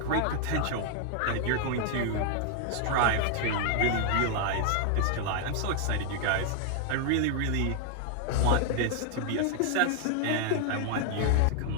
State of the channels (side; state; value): both; different; correlation 0.00